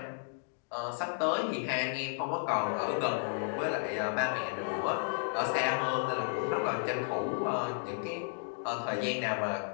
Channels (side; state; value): right; silent; digital silence